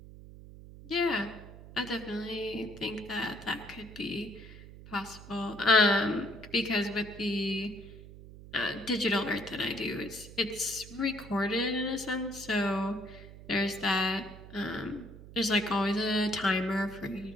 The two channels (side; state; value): right; noise; hum, 16 dB below the sound